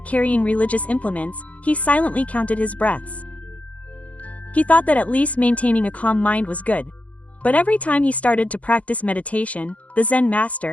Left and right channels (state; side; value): late; right; 0.067 ms